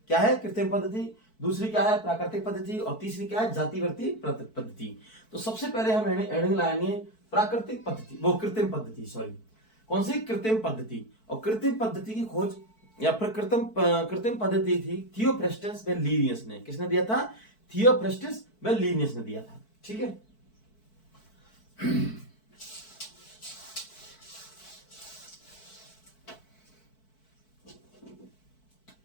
क्या है? कृत्रिम पद्धति। दूसरी क्या है? प्राकृतिक पद्धति। और तीसरी क्या है? जातिवृत्तीय पद्धति। तो सबसे पहले हम हेडिंग लाएंगे प्राकृतिक पद्धति, वो कृत्रिम पद्धति, सॉरी कौन सी? कृत्रिम पद्धति। और कृत्रिम पद्धति की खोज या फिर कृत्रिम पद्धति थी थियोफ्रास्टस व लीनियस ने। किसने दिया था? थियोफ्रास्टस व लीनियस ने दिया था। ठीक है।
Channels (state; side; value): late; right; 4.6 ms